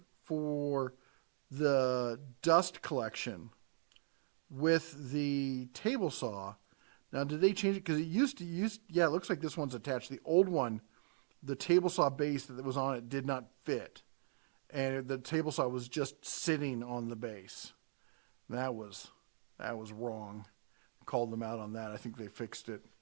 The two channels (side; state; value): left; silent; digital silence